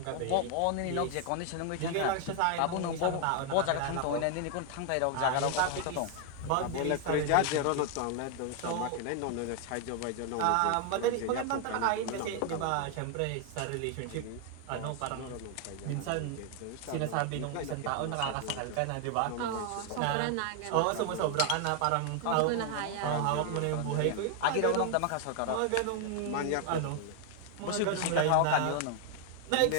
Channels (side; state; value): both; different; correlation 0.00